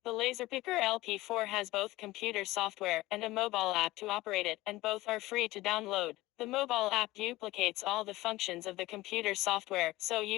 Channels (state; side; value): quieter; right; 18.5 dB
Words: The Laser Picker LP4 has both computer software and a mobile app to operate it, and both are free to download. The mobile app duplicates all the functions of the computer software, so